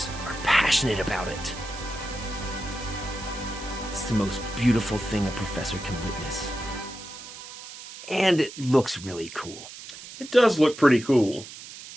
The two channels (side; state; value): right; noise; hiss, 14 dB below the sound